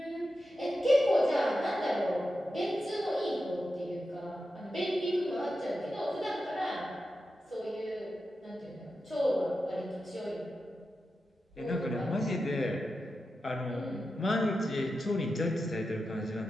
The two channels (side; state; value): both; normal; correlation 0.90